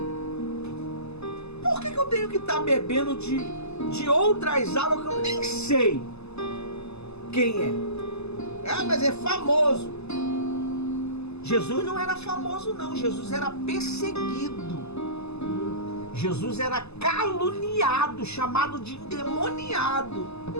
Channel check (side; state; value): right; late; 0.79 ms